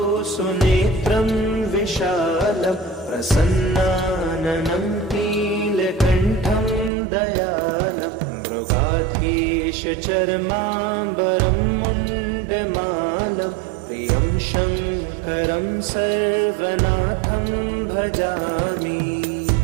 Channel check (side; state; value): left; drops out; at 6.9 s